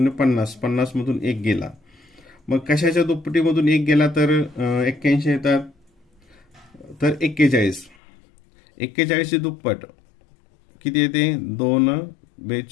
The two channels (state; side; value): drops out; right; at 8.0 s